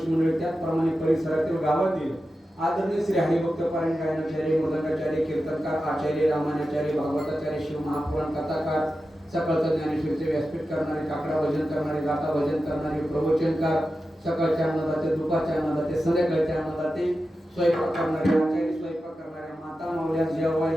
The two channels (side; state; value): both; normal; correlation 0.92